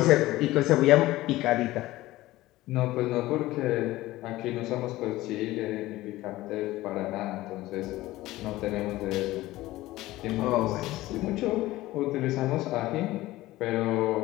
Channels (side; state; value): right; quieter; 17.3 dB